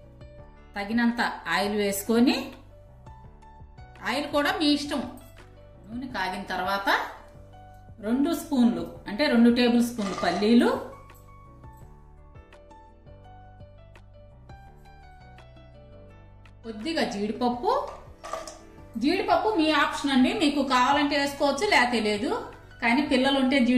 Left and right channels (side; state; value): both; identical; correlation 1.00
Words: తగినంత ఆయిల్ వేసుకొని, ఆయిల్ కూడా మీ ఇష్టం. నూనె కాగిన తర్వాత 2 స్పూన్లు అంటే 2 టేబుల్ స్పూన్లు పల్లీలు, కొద్దిగా జీడిపప్పు. జీడిపప్పు మీ ఆప్షన్ అండి. మీకు కావాలంటే వేసుకోవచ్చు, లేకపోతే లేదు. కానీ పిల్లలు ఉంటే